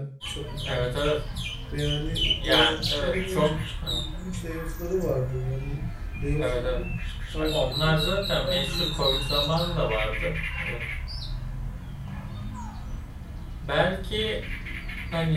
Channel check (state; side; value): identical; both; correlation 1.00